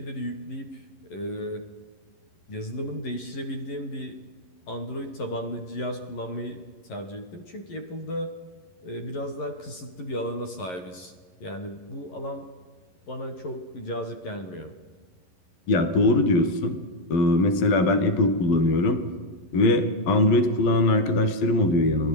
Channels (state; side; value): late; right; 11 ms